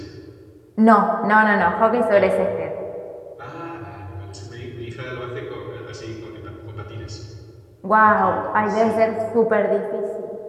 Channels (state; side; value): identical; both; correlation 1.00